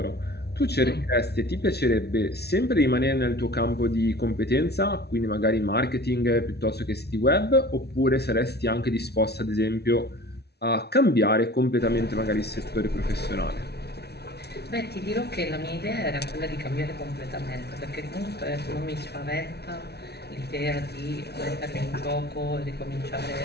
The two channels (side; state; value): right; late; 0.48 ms